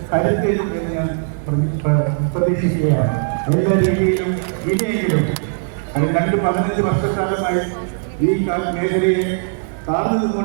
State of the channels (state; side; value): silent; left; 64 dB below the other